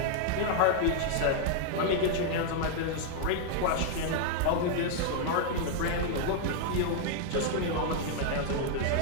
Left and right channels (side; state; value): both; different; correlation 0.00